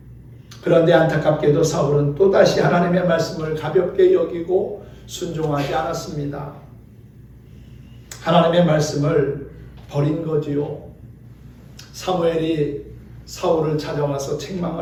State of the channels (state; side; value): identical; both; correlation 1.00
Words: 그런데 안타깝게도 사울은 또다시 하나님의 말씀을 가볍게 여기고 순종하지 않았습니다. 하나님의 말씀을 버린 거지요. 사무엘이 사울을 찾아와서